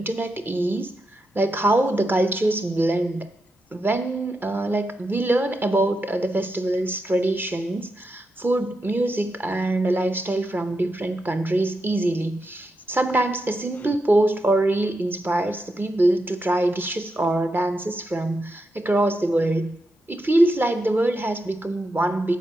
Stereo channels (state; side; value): normal; both; correlation 0.85